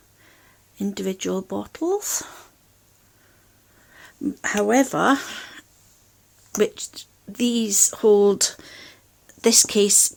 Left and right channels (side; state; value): both; identical; correlation 1.00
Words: individual bottles. However, this